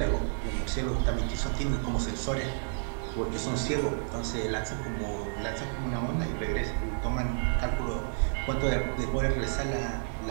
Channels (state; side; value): silent; left; digital silence